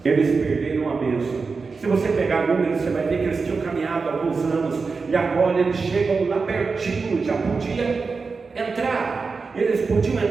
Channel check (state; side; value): quieter; left; 4.6 dB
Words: Eles perderam a bênção. Se você pegar números, você vai ver que eles tinham caminhado alguns anos e agora eles chegam lá pertinho, já podia entrar. Eles podiam